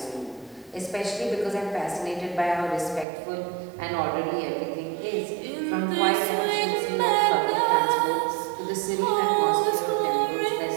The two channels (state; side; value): drops out; left; at 3.1 s